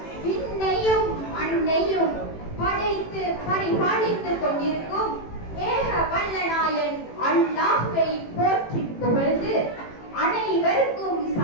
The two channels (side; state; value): right; late; 18 ms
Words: விண்ணையும் மண்ணையும் படைத்து பரிபாலித்துக் கொண்டிருக்கும் ஏக வல்லநாயன் அல்லாஹ்வை போற்றி புகழ்ந்து அனைவருக்கும்